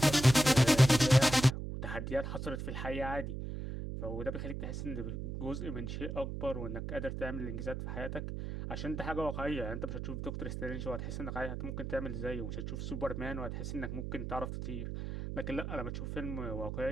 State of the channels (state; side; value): noise; right; hum, 5 dB below the sound